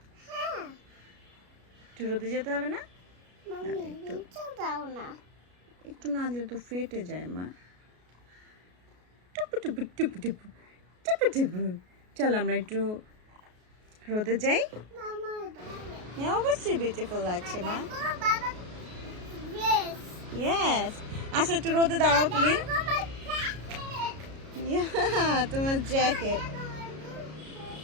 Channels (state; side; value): late; left; 33 ms